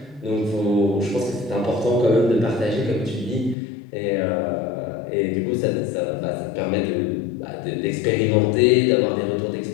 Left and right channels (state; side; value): drops out; right; at 3.6 s